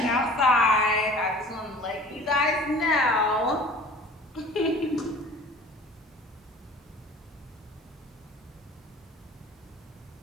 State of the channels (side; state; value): both; normal; correlation 0.45